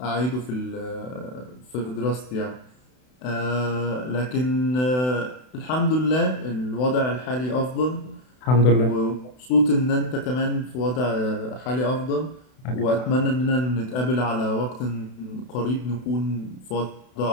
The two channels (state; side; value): late; right; 32 ms